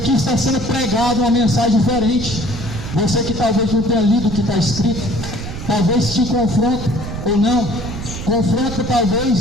está sendo pregado uma mensagem diferente. Você que talvez não tenha lido o que está escrito, talvez te confronte ou não. Confronta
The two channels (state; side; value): noise; right; rumble, 8 dB below the sound